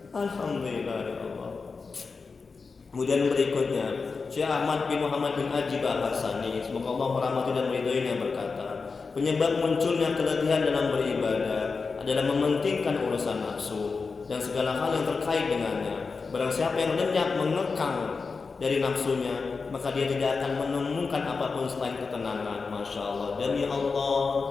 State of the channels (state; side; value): quieter; right; 4.6 dB